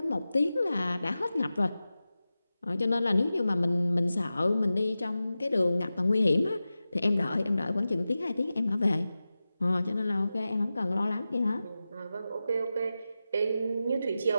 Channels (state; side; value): inverted; both; correlation -0.94